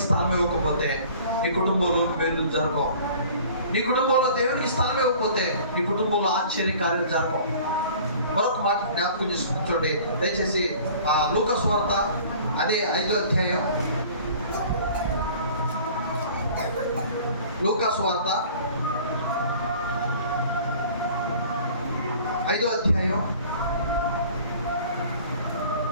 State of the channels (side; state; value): both; inverted; correlation -0.48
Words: స్థలం ఇవ్వకపోతే నీ కుటుంబంలో మేలు జరగవు. నీ కుటుంబంలో దేవునికి స్థలం ఇవ్వకపోతే నీ కుటుంబంలో ఆశ్చర్యకార్యాలు జరగవు. మరొక మాట జ్ఞాపకం చేసుకుని చూడండి దయచేసి. లూకా సువార్త అదే 5వ అధ్యాయం. లూకా సువార్త 5వ అధ్యాయం